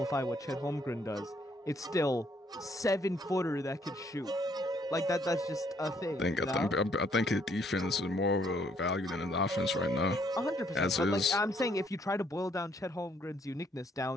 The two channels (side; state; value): both; normal; correlation 0.68